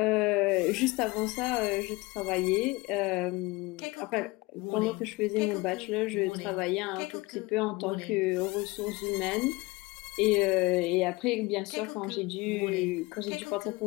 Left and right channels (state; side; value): quieter; right; 23.1 dB